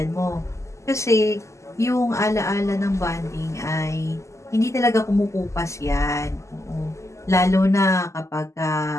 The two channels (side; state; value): right; late; 0.14 ms